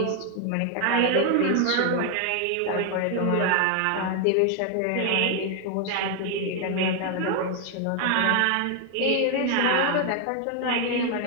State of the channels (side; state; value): both; different; correlation 0.01